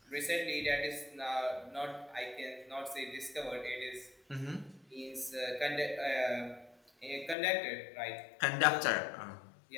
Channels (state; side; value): drops out; right; at 7.4 s